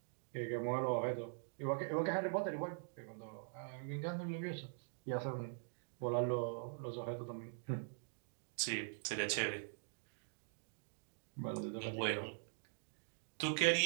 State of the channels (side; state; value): left; silent; digital silence